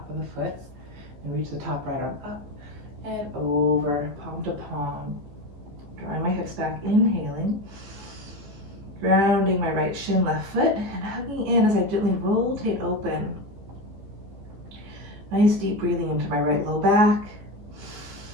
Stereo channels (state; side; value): late; left; 15 ms